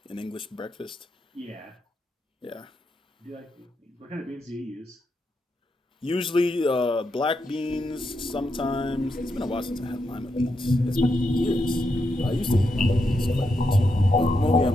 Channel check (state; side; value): normal; both; correlation 0.83